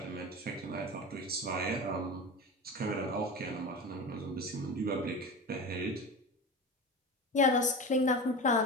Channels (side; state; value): both; normal; correlation 0.28